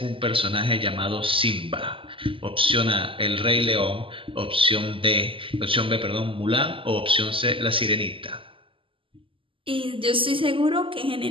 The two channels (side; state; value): left; late; 0.25 ms